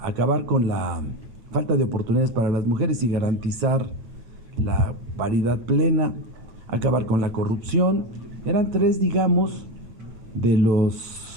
acabar con la falta de oportunidades para las mujeres y garantizar la paridad plena, acabar con la corrupción. Eran tres, digamos, de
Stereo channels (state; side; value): late; left; 9.1 ms